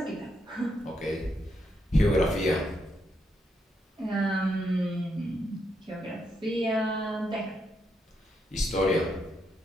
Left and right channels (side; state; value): both; normal; correlation 0.79